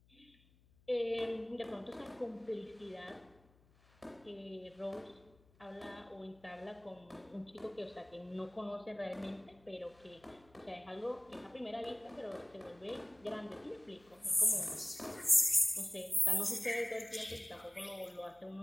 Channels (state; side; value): noise; left; hum, 29 dB below the sound